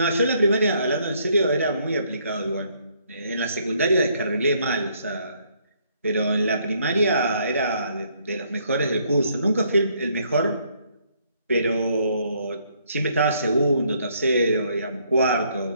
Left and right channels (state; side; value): inverted; both; correlation -0.68